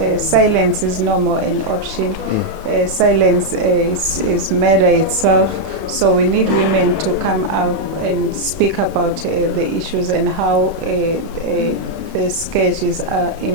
silence is no more an option. Silence is murder itself. So we need women to come out and speak about the issues and how the scourges are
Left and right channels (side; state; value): left; late; 31 ms